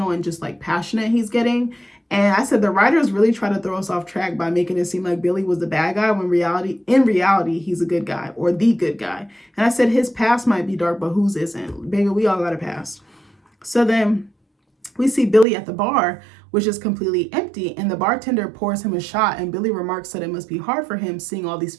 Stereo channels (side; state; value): left; drops out; at 15.5 s